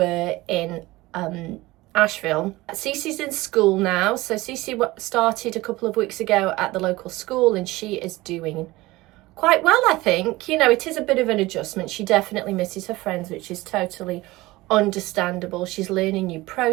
in Asheville. Cece's in school now, so Cece started a couple of weeks ago at the local school, and she is doing quite well, I think. You know, it is a bit of an adjustment. She definitely misses her friends, which is totally understandable. She's learning new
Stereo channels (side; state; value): left; quieter; 19.7 dB